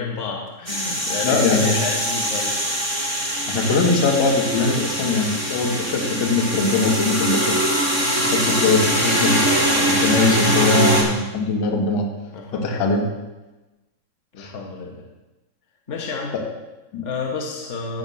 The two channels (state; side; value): late; left; 3.6 ms